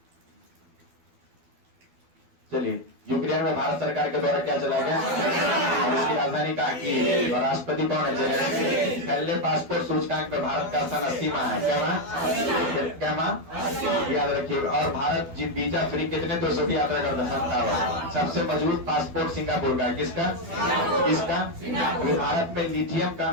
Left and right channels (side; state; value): left; late; 12 ms